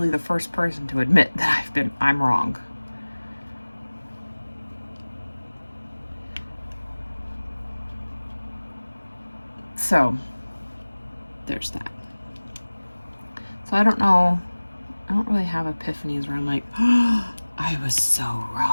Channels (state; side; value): inverted; both; correlation -1.00